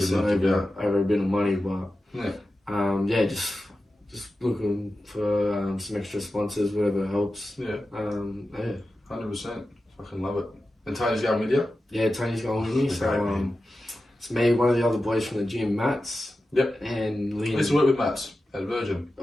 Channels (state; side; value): normal; both; correlation 0.93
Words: it over a bit of money. But just looking for some extra sponsors, whatever helps. 100%. Fucking love it. And Tony's going with you? Yeah, Tony's going with me. So it's me, one of the other boys from the gym, Mats. Yep. And Liam. I used to work with Mats at Virgin.